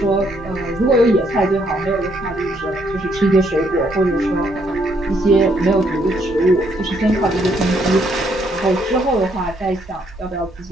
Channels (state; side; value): normal; both; correlation 0.71